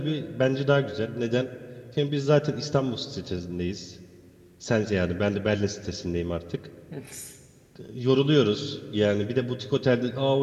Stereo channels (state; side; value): identical; both; correlation 1.00